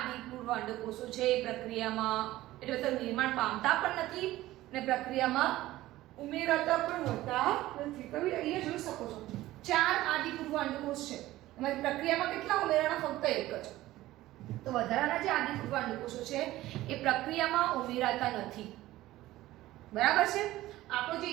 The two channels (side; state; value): left; quieter; 16.2 dB